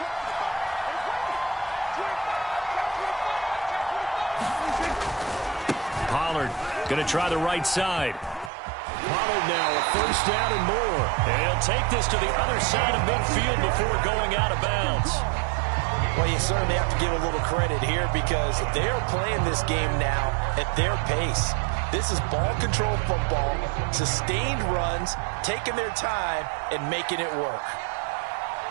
Pollard going to try the right side. Pollard now a first down and more. And he'll take this to the other side of midfield before going out of bounds. Well, you certainly have to give a little credit here because they're playing this game now at their pace. This is ball control football, sustained runs, taking their time, and making it work.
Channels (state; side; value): drops out; left; at 8.5 s